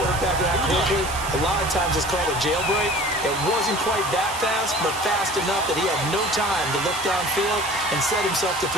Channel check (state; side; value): noise; right; hiss, 11 dB below the sound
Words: that quickly, a lot of times it's called a jailbreak. It wasn't quite that fast, but fast enough that he had no time to look downfield and set himself to